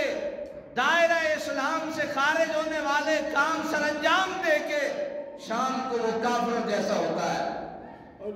دائرہ اسلام سے خارج ہونے والے کام سر انجام دے کے، شام کو وہ کافر جیسا ہوتا ہے.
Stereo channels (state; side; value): identical; both; correlation 1.00